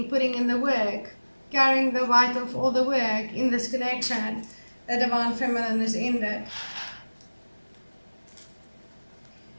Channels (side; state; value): both; inverted; correlation -1.00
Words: putting in the work, carrying the weight of all the work in this connection. The Divine Feminine is ended.